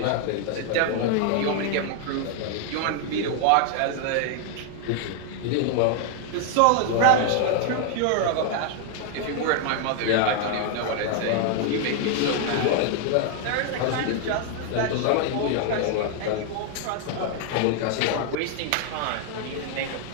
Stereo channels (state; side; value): different; both; correlation 0.00